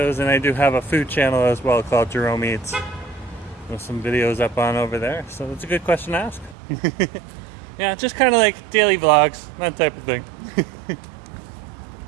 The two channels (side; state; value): left; drops out; at 6.6 s